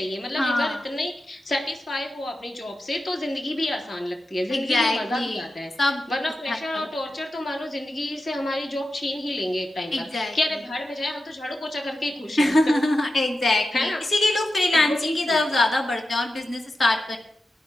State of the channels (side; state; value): both; normal; correlation 0.91